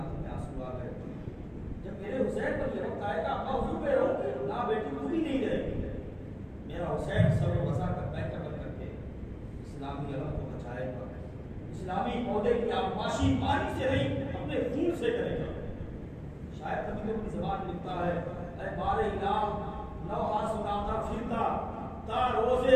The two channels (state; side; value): identical; both; correlation 1.00